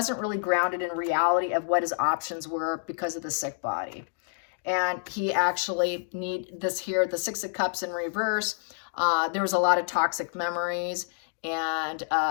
really grounded in reality of what his options were because of the sick body. And he actually need this here, the Six of Cups in reverse. There was a lot of toxic memories. And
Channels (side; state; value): right; silent; digital silence